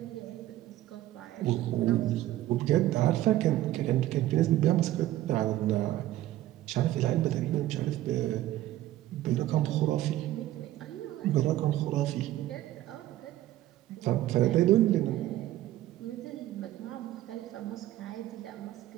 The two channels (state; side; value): quieter; left; 14.6 dB